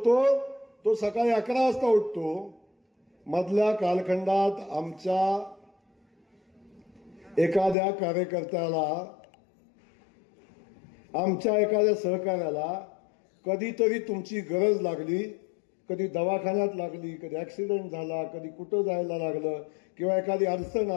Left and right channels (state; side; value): drops out; right; at 7.8 s